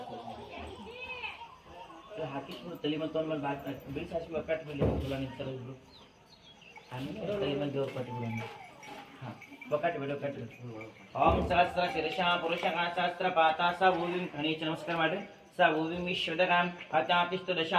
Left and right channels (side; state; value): both; identical; correlation 1.00